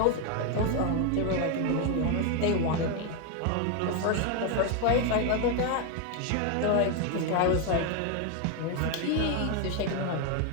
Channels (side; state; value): both; different; correlation 0.01